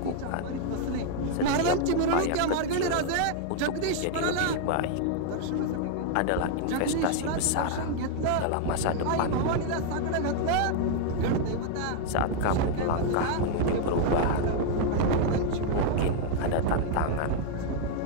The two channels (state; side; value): different; both; correlation 0.00